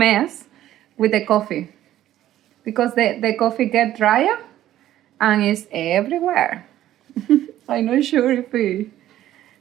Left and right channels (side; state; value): left; quieter; 13.1 dB